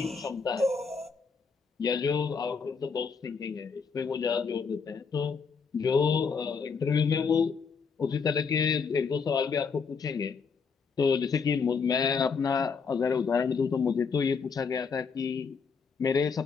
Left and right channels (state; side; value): quieter; right; 5.5 dB